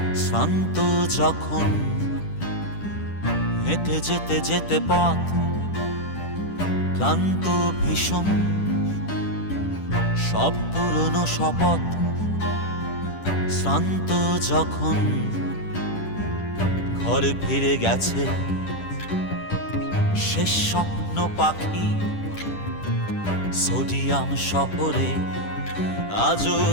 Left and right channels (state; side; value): late; right; 10 ms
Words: শ্রান্ত যখন। হেঁটে যেতে যেতে পথ ক্লান্ত ভীষণ, সব পুরনো শপথ শ্রান্ত যখন। ঘরে ফিরে গেছে শেষ স্বপ্ন পাখি সোডিয়াম শহরে, আজও